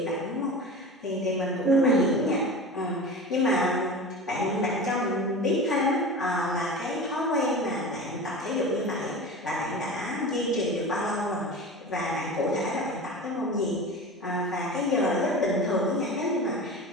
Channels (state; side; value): normal; both; correlation 0.32